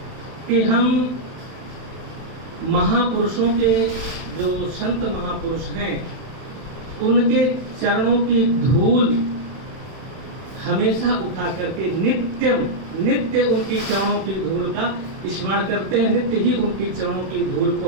कि हम महापुरुषों के, जो संत महापुरुष हैं, उनके चरणों की धूल हमेशा उठा करके नित्य उनकी चरणों की धूल का स्मरण करते हैं, नित्य ही उनकी चरणों की धूल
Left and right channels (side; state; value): left; late; 31 ms